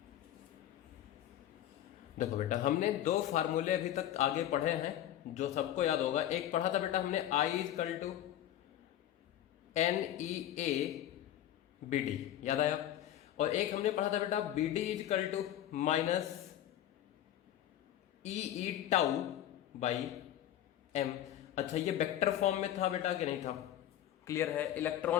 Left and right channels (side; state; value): right; quieter; 12.0 dB